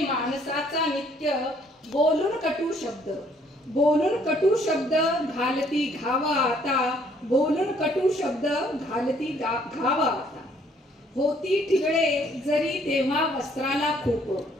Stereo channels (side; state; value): both; normal; correlation 0.64